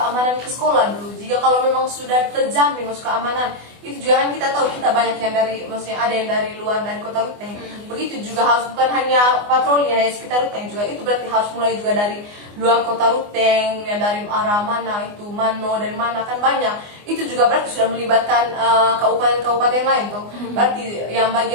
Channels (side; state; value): left; late; 24 ms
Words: ke sekolah dulu. Jika kalau memang sudah terjamin masuk keamanan, itu juga kan kita tahu kita banyak yang dari, maksudnya ada yang dari luar, dari kota Ruteng. Begitu juga harus bukan hanya patroli hanya sekitar Ruteng juga, itu berarti harus mulai juga dari luar kota Ruteng, yang dari arah mana itu Mano, dari mana kan banyak. Itu juga berarti sudah melibatkan kabupaten-kabupaten lain tuh. Berarti yang